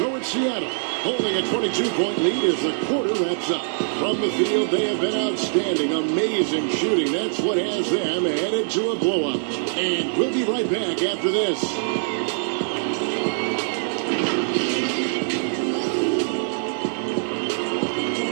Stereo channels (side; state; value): left; silent; 62 dB below the other